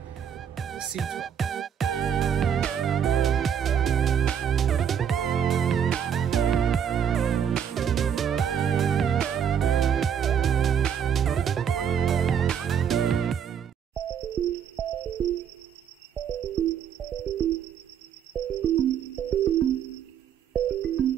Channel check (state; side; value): quieter; left; 8.3 dB